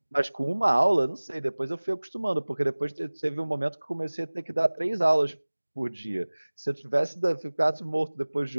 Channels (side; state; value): both; inverted; correlation -1.00